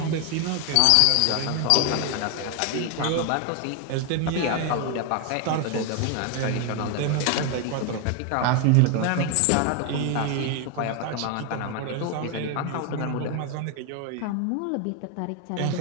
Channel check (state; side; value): different; both; correlation 0.01